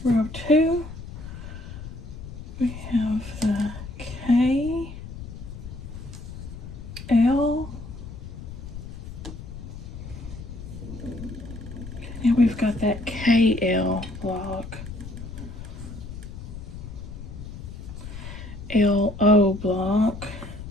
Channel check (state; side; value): noise; left; rumble, 11 dB below the sound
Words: Row 2, we have the K, L, now we've got that KL block, LO block,